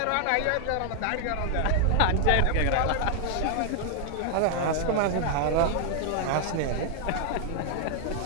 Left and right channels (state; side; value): different; both; correlation 0.00